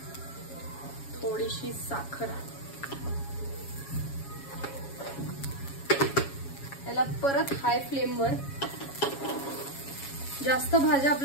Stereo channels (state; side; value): late; right; 7.2 ms